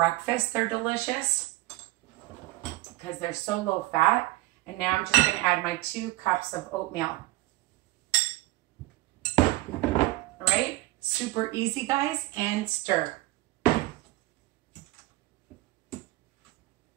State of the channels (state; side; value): quieter; left; 19.1 dB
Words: they're delicious because they're so low fat. And now I'm just going to add my 2 cups of oatmeal. All right. Super easy, guys, and stir. And